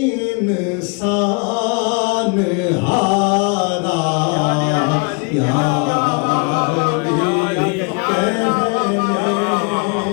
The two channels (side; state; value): right; quieter; 33.8 dB